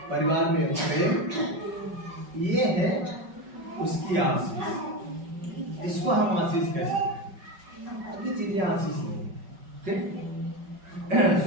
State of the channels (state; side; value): late; left; 5.3 ms